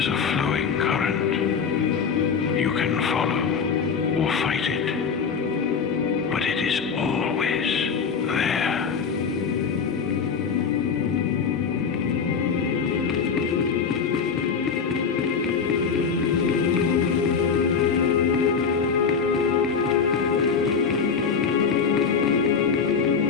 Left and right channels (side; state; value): right; quieter; 6.0 dB